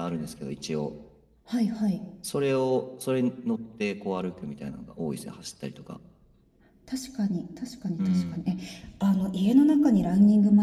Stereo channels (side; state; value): both; identical; correlation 1.00